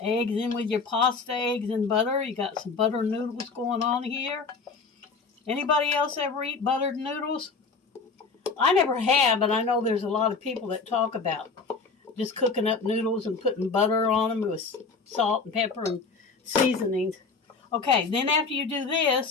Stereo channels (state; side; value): quieter; right; 4.5 dB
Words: eggs in with your pasta, eggs and butter. You got some butter noodles going on here. Anybody else ever eat buttered noodles? I never have, but I know there's a lot of people that talk about just cooking up noodles and putting butter on them with salt and pepper and seasonings. Okay, then after you do